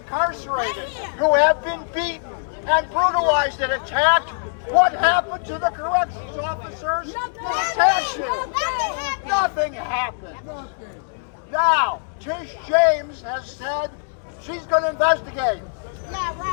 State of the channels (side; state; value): right; silent; digital silence